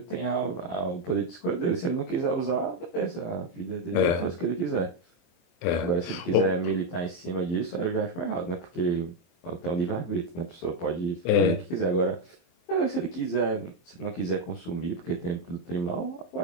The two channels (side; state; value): right; late; 23 ms